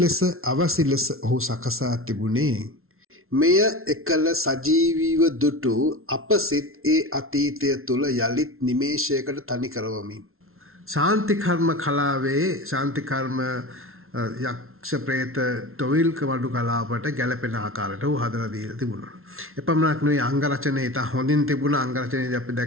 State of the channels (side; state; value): left; late; 0.62 ms